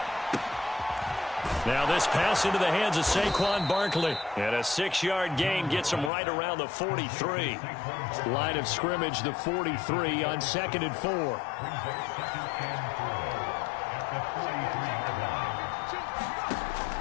Now this pass into the hands of Saquon Barkley. And a 6-yard gain gets him right around the 43. Line of scrimmage, the 43 on 2nd and 4.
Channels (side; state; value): right; drops out; at 6.1 s